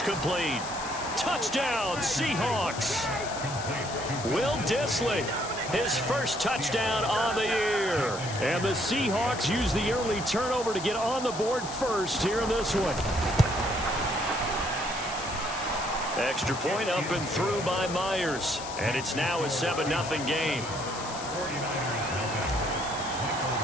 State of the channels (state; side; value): noise; left; hiss, 10 dB below the sound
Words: complete. Touchdown, Seahawks. Will Dissly, his first touchdown on the year. And the Seahawks use the early turnover to get on the board first here in this one. Extra point up and through by Myers. And it's now a 7-0 game.